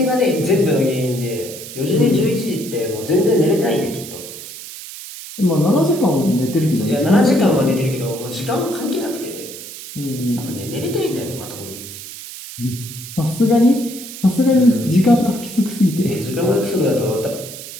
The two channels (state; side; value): noise; right; hiss, 12 dB below the sound